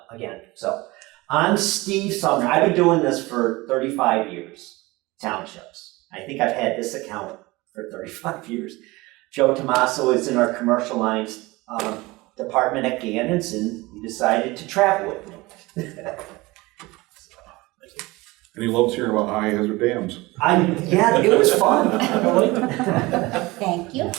again, so on Steve Sumner, I've been doing this for 35 years, townships. I think I've had this account for 35 years. Joe Tomaso is in our commercial lines department at Gannon's, and he decided to travel with me. And he loves hearing about high hazard dams. Yeah, it was fun. Thank you.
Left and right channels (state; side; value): quieter; left; 21.8 dB